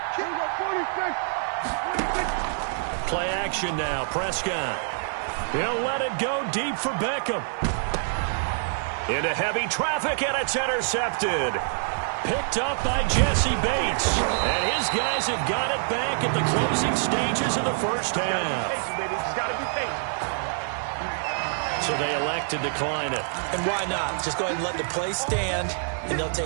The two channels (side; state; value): left; silent; digital silence